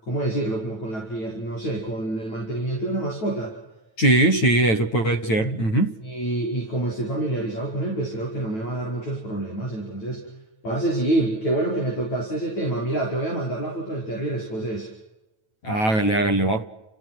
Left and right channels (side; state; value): right; late; 9.2 ms